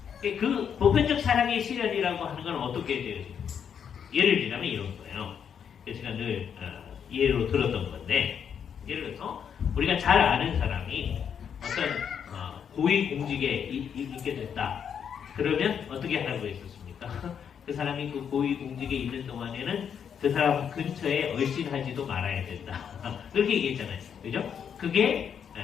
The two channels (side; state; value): right; quieter; 7.8 dB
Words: 그 보편적 사랑의 실현이라고 하는 건 어떻게 돼요? 예를 들자면 이런 거예요. 제가 늘 예로 들었던 건데, 예를 들어서 우리가 잘 아는 사람이 어떤 고위공직에 있게 됐다. 그러면 어떻게 하라고 했었습니까? 그 사람이 그 고위공직에 있는 동안에는 그 사람 근처에 얼씬하지도 말아야 된다. 그렇게 얘기했잖아요. 그죠? 그게